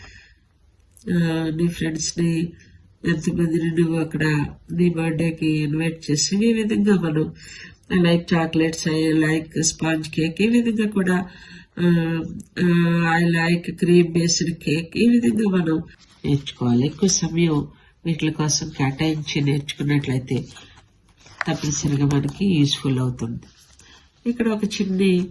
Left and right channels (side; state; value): both; identical; correlation 1.00